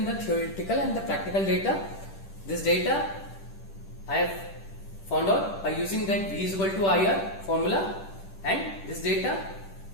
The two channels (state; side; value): late; right; 10 ms